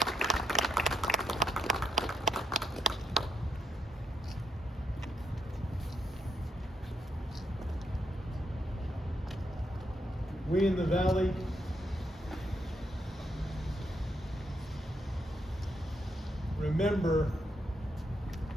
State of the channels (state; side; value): normal; both; correlation 0.77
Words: We in the Valley remember